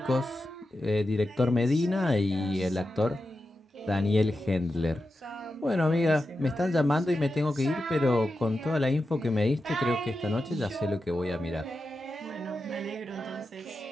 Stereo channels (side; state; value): both; normal; correlation 0.90